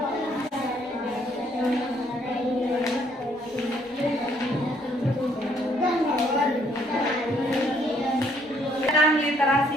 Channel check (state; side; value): normal; both; correlation 0.66